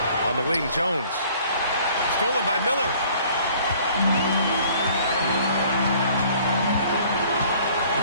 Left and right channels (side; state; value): both; inverted; correlation -0.55